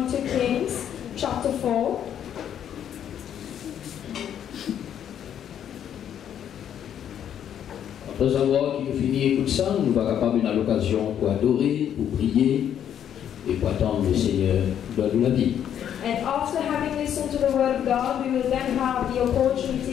in 2 Kings chapter 4. Après avoir fini écouter ça, nous sommes capables d'avoir l'occasion pour adorer, pour prier et pour attendre le Seigneur de la vie. And after having listened to the word of God, we will then have the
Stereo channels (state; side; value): quieter; right; 9.6 dB